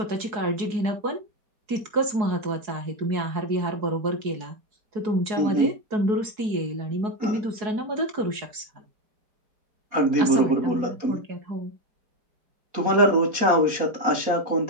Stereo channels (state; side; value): late; left; 4.7 ms